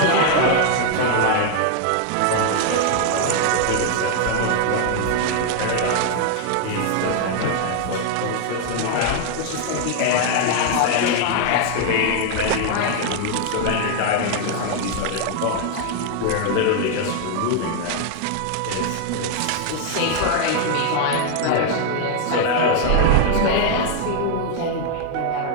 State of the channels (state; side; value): different; both; correlation 0.00